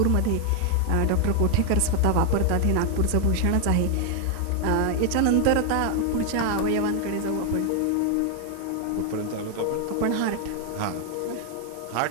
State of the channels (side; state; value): both; different; correlation 0.00